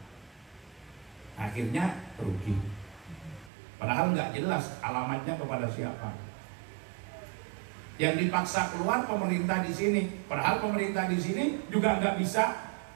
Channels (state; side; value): drops out; left; at 3.5 s